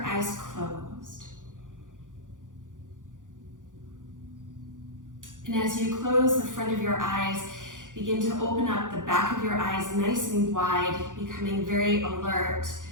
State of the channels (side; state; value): left; late; 0.88 ms